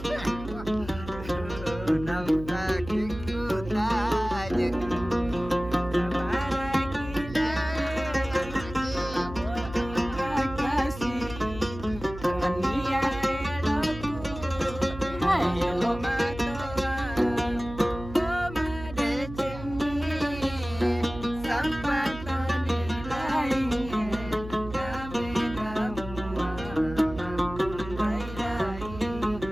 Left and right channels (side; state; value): right; noise; hum, 12 dB below the sound